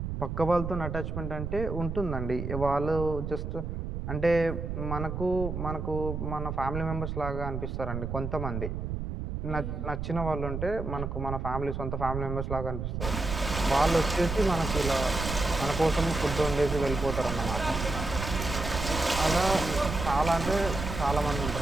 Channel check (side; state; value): right; noise; rumble, 4 dB below the sound